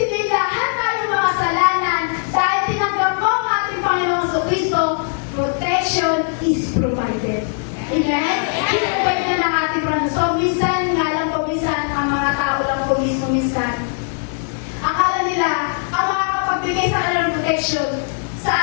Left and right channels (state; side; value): silent; right; 66 dB below the other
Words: lahat tayo makasalanan dahil tinanggap mo ang ating Panginoong Jesucristo, protection is provided. Amen? I-provide na ng ating Panginoon. So, minsan, nga lang po, minsan, ang mga tao lang po mismo minsan, akala nila, ang makakapagbigay sa kanila ng protection